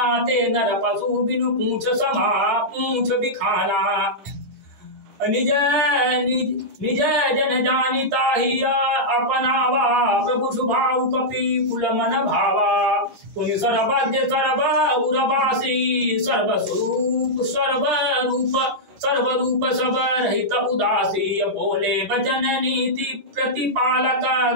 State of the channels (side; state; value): left; late; 10 ms